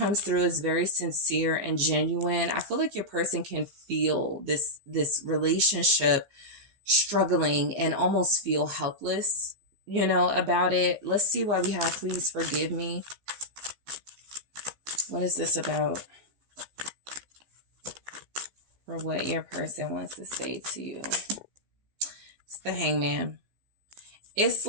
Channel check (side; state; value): left; late; 15 ms